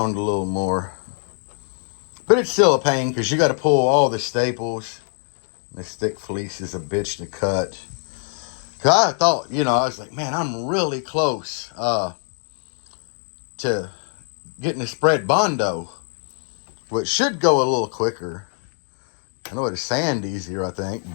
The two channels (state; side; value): silent; right; 58 dB below the other